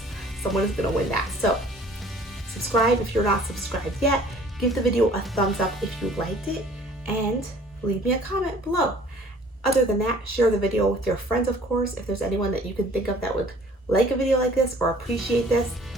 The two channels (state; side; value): normal; both; correlation 0.53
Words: someone is gonna win that. So subscribe if you're not subscribed yet. Give the video a thumbs up if you liked it, and leave me a comment below. Other than that, share the video with your friends, of course, if there's anyone that you can think of that would like a video like this or appreciate this.